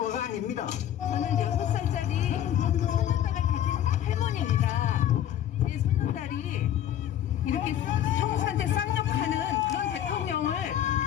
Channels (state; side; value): quieter; right; 11.1 dB